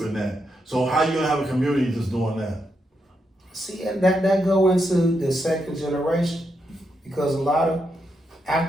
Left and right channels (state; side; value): normal; both; correlation 0.82